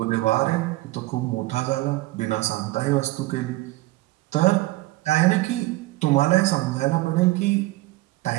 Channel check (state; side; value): quieter; left; 19.4 dB